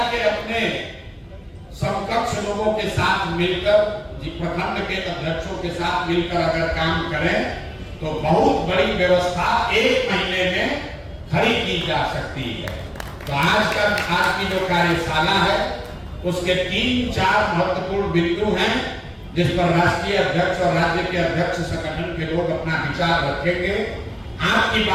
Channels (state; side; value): identical; both; correlation 1.00